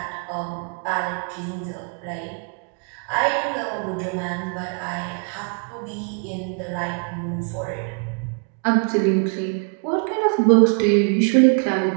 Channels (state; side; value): quieter; left; 39.7 dB